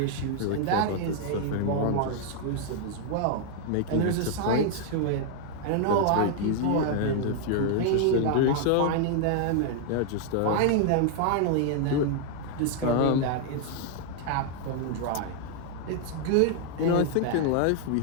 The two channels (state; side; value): different; both; correlation 0.00